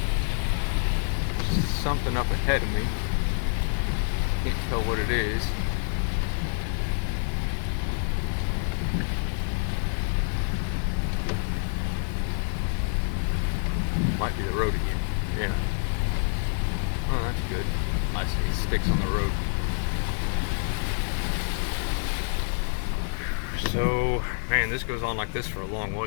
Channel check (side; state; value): right; silent; digital silence